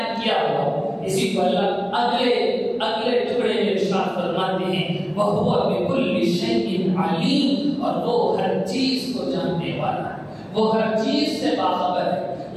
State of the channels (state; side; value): identical; both; correlation 1.00